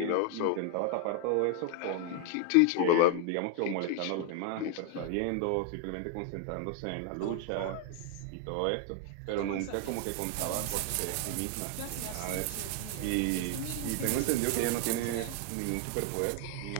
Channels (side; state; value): both; different; correlation 0.00